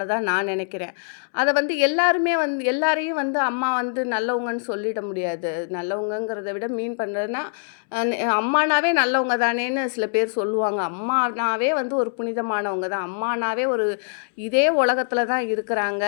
நான் நெனைக்கிறேன். அத வந்து எல்லாரையும் வந்து அம்மா வந்து நல்லவங்கன்னு சொல்லிட முடியாது. நல்லவங்கங்கிறத விட மீன் பண்றதுன்னா, அம்மானாவே நல்லவங்க தானேன்னு சில பேர் சொல்லுவாங்க. அம்மானாவே வந்து ஒரு புனிதமானவங்க தான். அம்மானாவே ஒரு இதே உலகத்துல தான் இருக்கிறாங்க.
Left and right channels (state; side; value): silent; right; 63 dB below the other